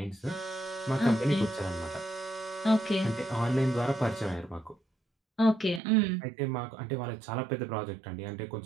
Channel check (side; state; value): left; drops out; at 5.8 s